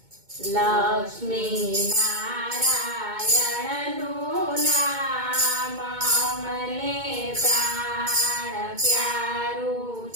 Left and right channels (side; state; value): left; late; 2.2 ms